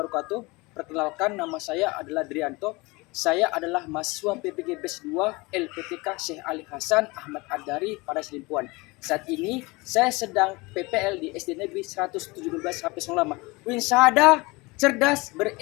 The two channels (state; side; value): quieter; right; 24.4 dB